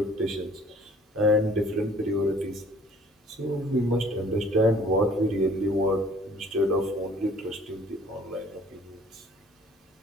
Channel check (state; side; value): normal; both; correlation 0.55